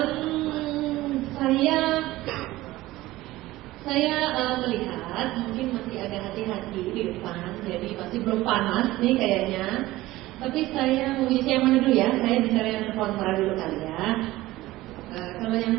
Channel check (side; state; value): left; quieter; 17.5 dB